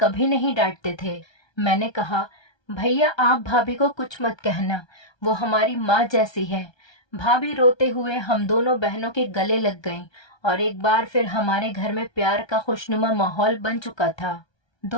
नहीं डांटते थे। मैंने कहा, भैया आप भाभी को कुछ मत कहना, वो हमारी माँ जैसी है। भाभी रोते हुए हम दोनों बहनों के गले लग गईं और एक बार फिर हमारे घर में प्यार का खुशनुमा माहौल बन चुका था।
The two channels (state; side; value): late; right; 1.3 ms